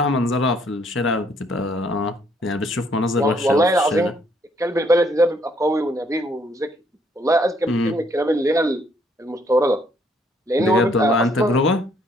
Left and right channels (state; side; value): normal; both; correlation 0.67